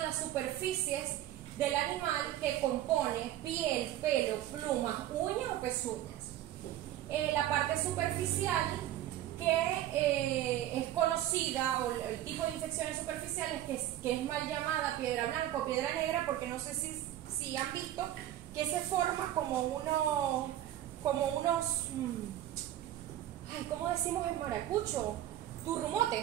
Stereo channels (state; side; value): quieter; left; 12.9 dB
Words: las superficies del animal que compone piel, pelo, plumas, uñas o pezuñas. La parte superficial, que es conocida, o el tipo de infecciones superficiales que es mal llamada piedra blanca o piedra negra, porque no sé si han visto que se forma como unos ¿cómo decimos en maracucho?